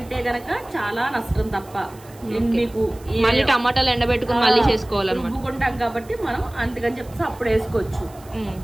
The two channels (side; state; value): right; noise; hiss, 24 dB below the sound